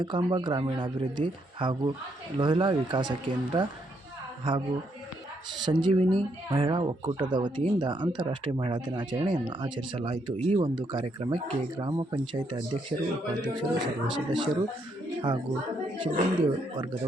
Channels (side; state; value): both; normal; correlation 0.75